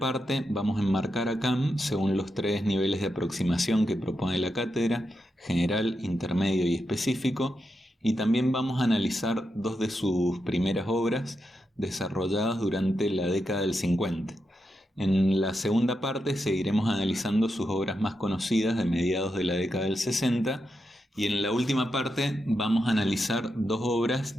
vamos a enmarcar a Kant según los tres niveles de aproximación que propone la cátedra: general, intermedio y específico, y también vamos a analizar dos de sus primeras obras desarrolladas durante la década del 50. En la segunda parte seguiremos analizando sus obras más conocidas de mediados de la década del 60, y en la última parte vamos a analizar dos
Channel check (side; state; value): both; normal; correlation 0.86